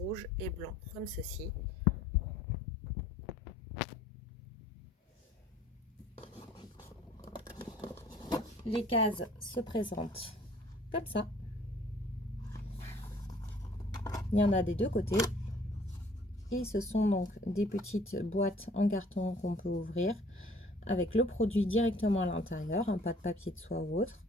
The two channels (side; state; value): both; normal; correlation 0.55